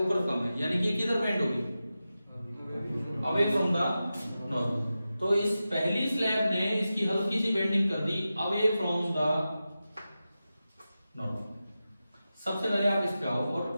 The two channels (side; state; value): both; inverted; correlation -0.93